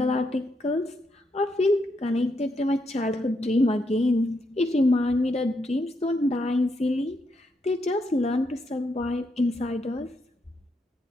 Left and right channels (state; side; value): normal; both; correlation 0.79